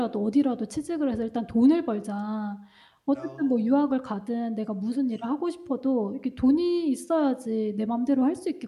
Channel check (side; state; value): both; identical; correlation 1.00